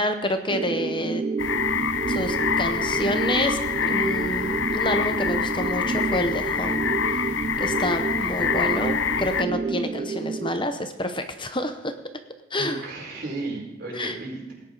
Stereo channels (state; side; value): normal; both; correlation 0.33